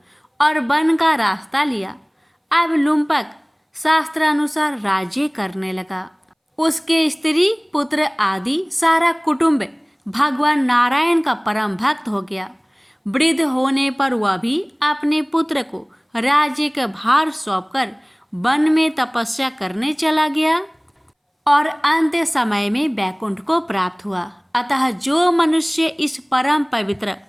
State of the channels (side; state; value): both; identical; correlation 1.00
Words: और वन का रास्ता लिया। अब लुम्पक शास्त्रानुसार राज्य करने लगा। उसके स्त्री पुत्र आदि सारा कुटुंब भगवान नारायण का परम भक्त हो गया। वृद्ध होने पर वह भी अपने पुत्र को राज्य का भार सौंपकर वन में तपस्या करने चला गया और अंत्य समय में वैकुंठ को प्राप्त हुआ। अतः जो मनुष्य इस परम पवित्र